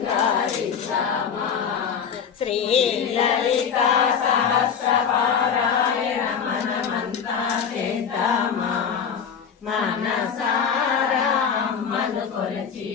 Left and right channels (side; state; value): right; quieter; 7.1 dB